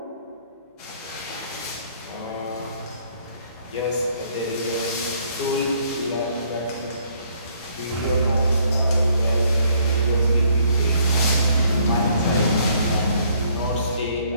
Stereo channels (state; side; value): inverted; both; correlation -0.65